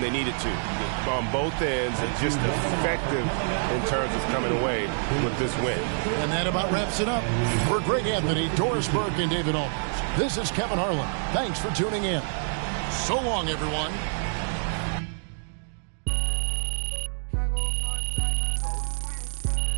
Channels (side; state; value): left; silent; digital silence